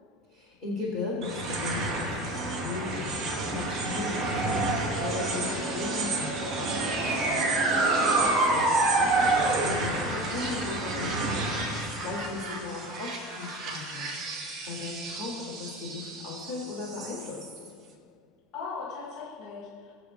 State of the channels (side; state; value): both; normal; correlation 0.32